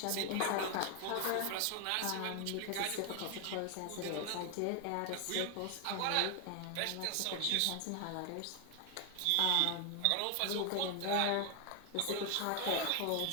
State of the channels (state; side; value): different; both; correlation 0.00